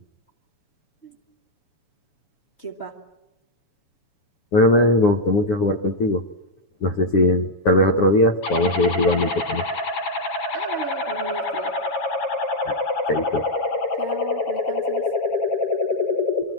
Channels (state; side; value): late; right; 7.1 ms